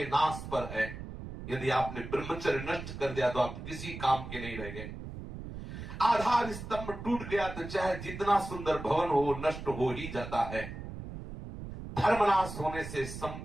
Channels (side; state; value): right; noise; rumble, 10 dB below the sound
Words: नाश पर है। यदि आपने ब्रह्मचर्य नष्ट कर दिया तो आप किसी काम के नहीं रह गए। आधार स्तंभ टूट गया तो चाहे जितना सुंदर भवन हो नष्ट हो ही जाता है। धर्मनाश होने से